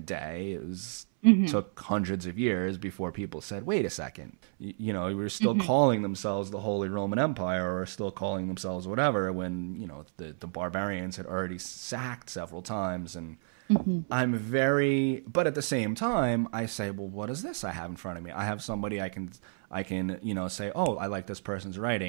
day. It was took hundreds of years before people said, wait a second, we were still calling themselves the Holy Roman Empire, or still calling themselves whatever, when, the barbarians had already sacked several times. And but at the same time, I say, well, what is this I have in front of me? I have somebody I can say, oh, I like this person's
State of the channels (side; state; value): left; silent; 57 dB below the other